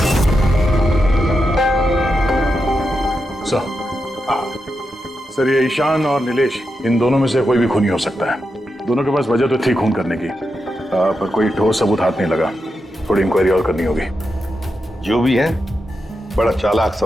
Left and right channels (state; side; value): normal; both; correlation 0.87